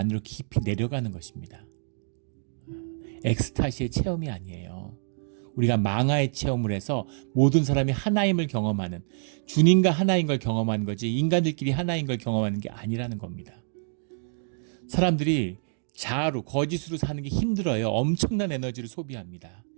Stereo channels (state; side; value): silent; left; digital silence